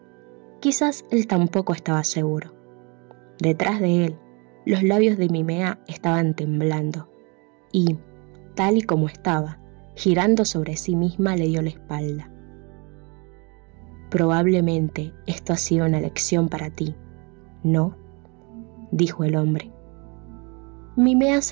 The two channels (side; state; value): left; quieter; 30.9 dB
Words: Quizás él tampoco estaba seguro. Detrás de él, los labios de Mimea estaban temblando y, tal y como estaba, girando sobre sí misma, le dio la espalda. Probablemente esto ha sido una lección para ti, ¿no?, dijo el hombre. Mimea